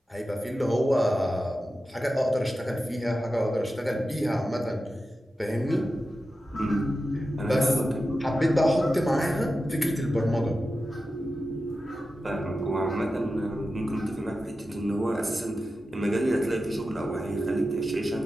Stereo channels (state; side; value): normal; both; correlation 0.92